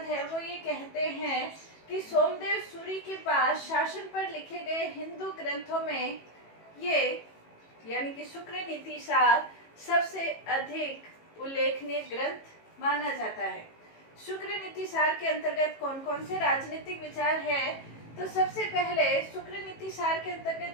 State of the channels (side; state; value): right; late; 18 ms